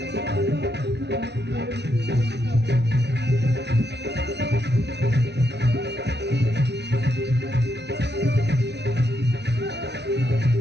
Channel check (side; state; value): left; late; 0.50 ms